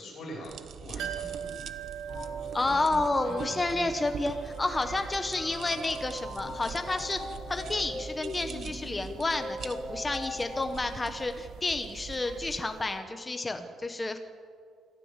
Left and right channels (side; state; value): both; normal; correlation 0.91